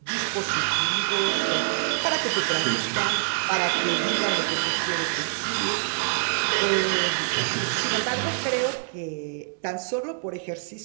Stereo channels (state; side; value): silent; left; digital silence